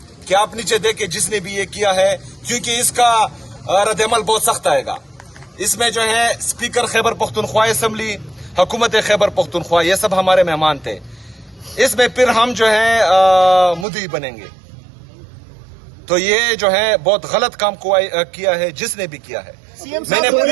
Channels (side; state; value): left; drops out; at 13.9 s